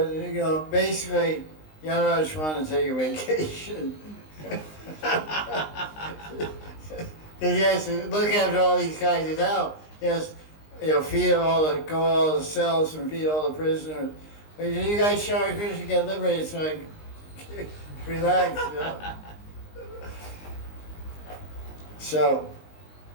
you know, basically, Yamaraj wanted to take a vacation. He has to look after all these guys in hell. Yes, feed all the cells and feed all the prisoners. But you guys show Krishna get liberated, so like, relax. So,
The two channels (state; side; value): late; right; 19 ms